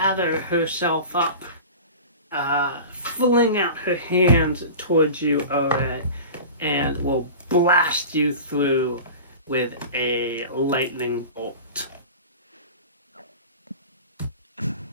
herself up, fling out her hands towards you, all right, and will blast you through with a lightning bolt.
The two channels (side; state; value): both; inverted; correlation -0.34